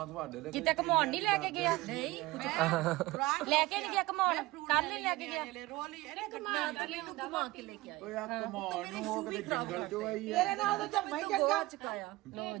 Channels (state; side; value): quieter; left; 19.9 dB